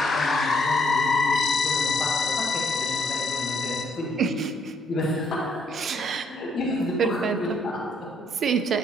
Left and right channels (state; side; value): normal; both; correlation 0.70